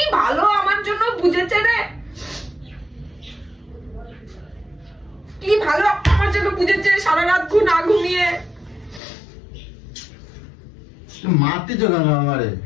ভালো আমার জন্য বুঝেছে রে। কি ভালো আমার জন্য বুঝেছে, সারা রাত না ঘুমিয়ে। তুমি মারতেছো কেন আমারে?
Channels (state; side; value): drops out; right; at 9.0 s